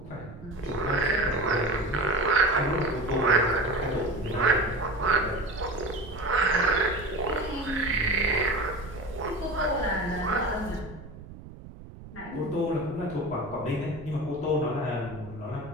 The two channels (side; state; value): right; noise; rumble, 16 dB below the sound